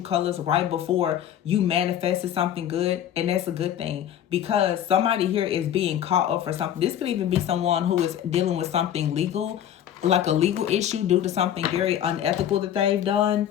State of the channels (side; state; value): right; quieter; 10.5 dB